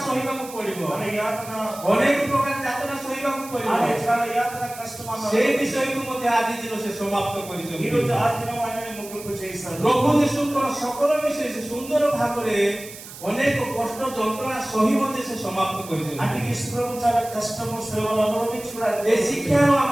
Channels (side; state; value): right; noise; hiss, 15 dB below the sound